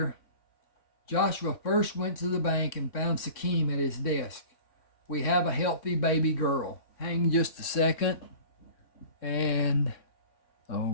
Joshua first went to the bank and found Sakim at his desk. We have a healthy baby girl. Hang just a second. And,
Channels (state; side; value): late; right; 3.6 ms